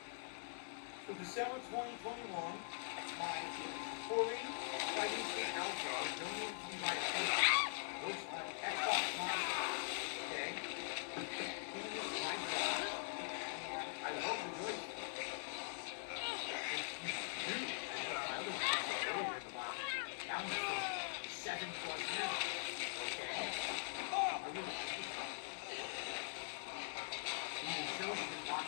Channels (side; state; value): right; silent; digital silence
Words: So December 2021, my Corey Fighting State Alpha donated to me by a team. Looks like Xbox Monster. Okay? Came in this nice box. And I love the joystick. It's, new. My other one I saw earlier in the box. That one's from 7+ years ago. Okay? I really like this one. You can show you can